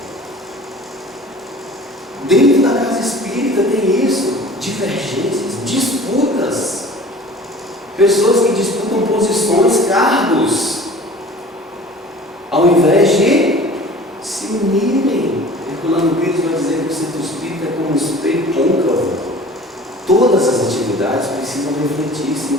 Dentro da casa espírita tem isso: divergências, disputas. Pessoas que disputam posições, cargos, ao invés de se unirem. Herculano Pires vai dizer que o centro espírita é como um espelho côncavo. Todas as atividades precisam refletir-se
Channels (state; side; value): normal; both; correlation 0.44